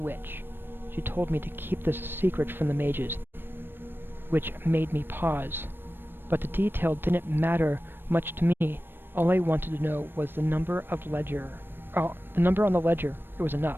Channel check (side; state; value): left; late; 0.098 ms